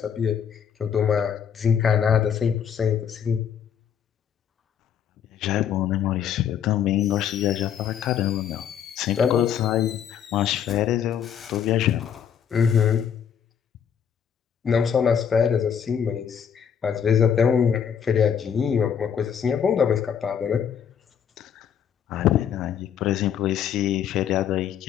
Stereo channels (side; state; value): right; quieter; 8.2 dB